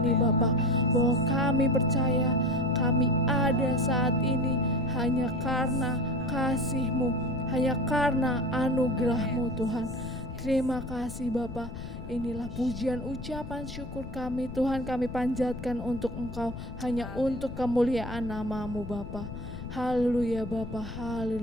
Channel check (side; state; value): left; noise; rumble, 10 dB below the sound